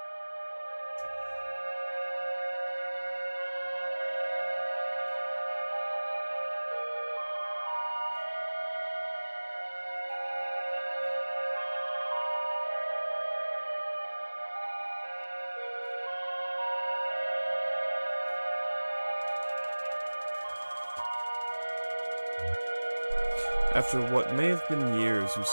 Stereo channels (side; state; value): both; inverted; correlation -1.00